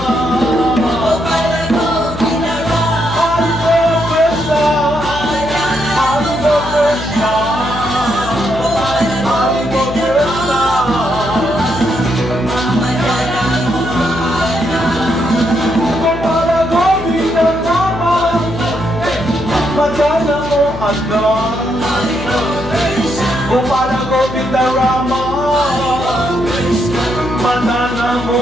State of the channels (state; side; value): noise; left; hum, 10 dB below the sound